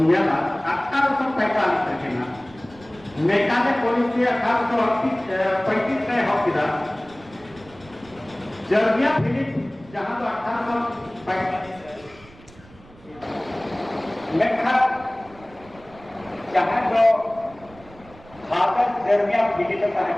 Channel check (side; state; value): right; noise; rumble, 23 dB below the sound